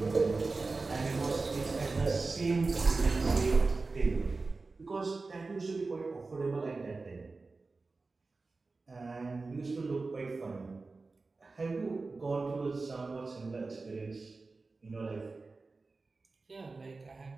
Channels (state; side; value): quieter; left; 3.8 dB